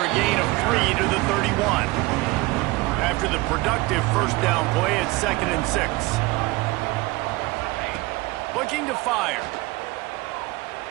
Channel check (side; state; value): left; quieter; 22.0 dB